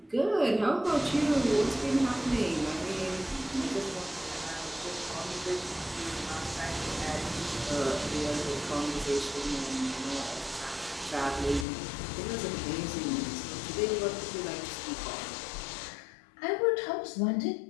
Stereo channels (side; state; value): right; drops out; at 11.7 s